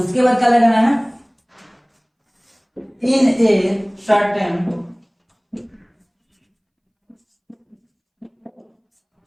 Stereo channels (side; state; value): both; identical; correlation 1.00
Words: बाद क्या लगाना है, इन ए सर्टेन,